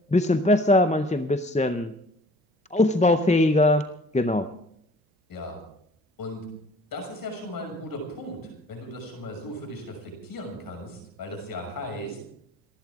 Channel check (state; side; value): normal; both; correlation 0.52